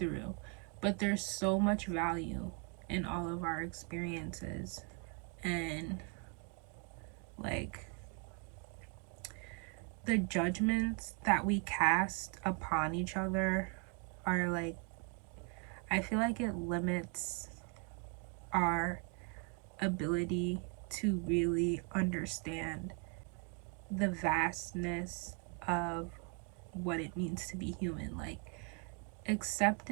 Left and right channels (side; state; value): left; quieter; 32.9 dB